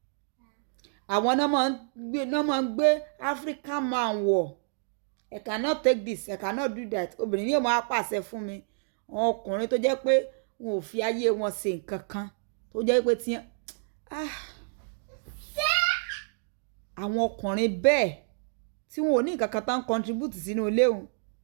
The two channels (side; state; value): left; silent; digital silence